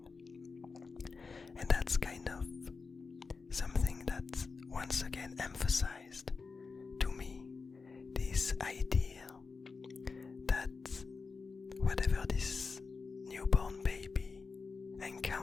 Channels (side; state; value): right; quieter; 4.6 dB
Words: And that's kind of something that once again emphasized to me this idea that whatever this newborn baby